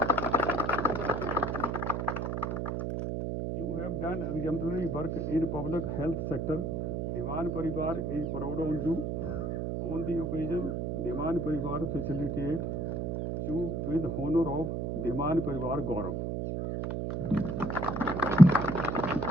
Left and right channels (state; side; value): noise; right; hum, 2 dB below the sound